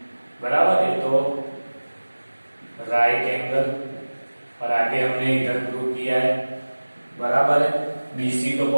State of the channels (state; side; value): inverted; both; correlation -1.00